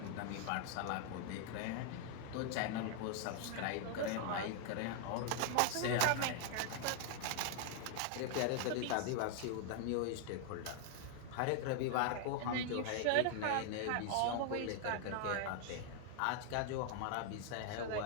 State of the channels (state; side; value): different; both; correlation 0.00